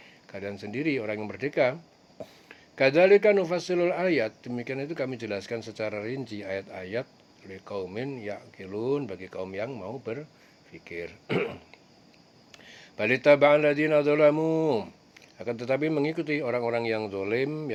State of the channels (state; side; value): identical; both; correlation 1.00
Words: kalian sendiri, orang yang merdeka. Kadzalika nufassilul ayat, demikian itu kami jelaskan secara rinci ayat-ayat liqaumin yaqilun, bagi kaum yang mau berpikir. Balitaba'al ladzina dzalamu, akan tetapi mengikuti orang-orang yang zalim,